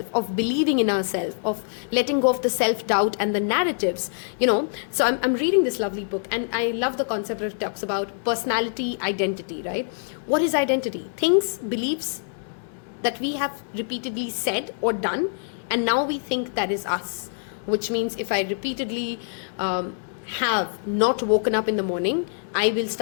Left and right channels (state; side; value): silent; right; 62 dB below the other